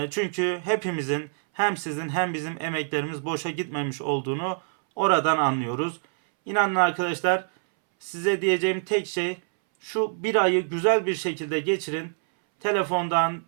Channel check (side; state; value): left; silent; 61 dB below the other